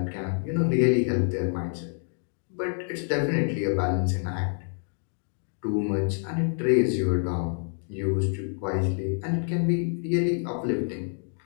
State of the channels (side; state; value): right; silent; 60 dB below the other